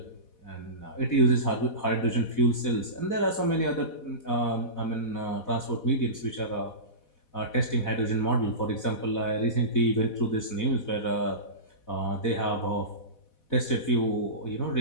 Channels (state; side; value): late; right; 4.1 ms